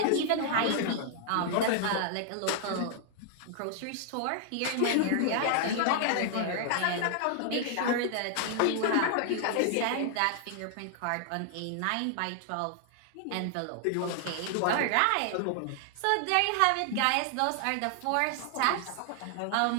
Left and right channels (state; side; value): different; both; correlation 0.00